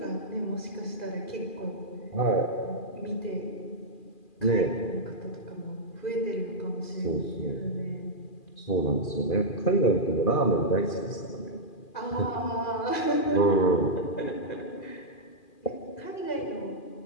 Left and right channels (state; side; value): late; right; 2.4 ms